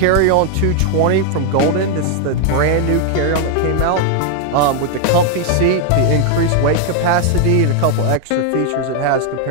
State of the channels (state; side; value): different; both; correlation 0.01